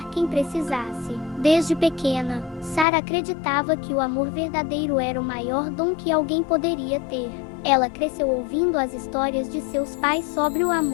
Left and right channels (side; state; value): right; drops out; at 2.9 s